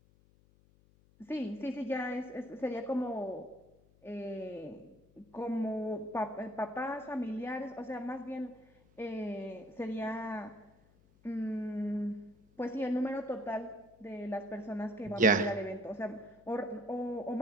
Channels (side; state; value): left; noise; hum, 29 dB below the sound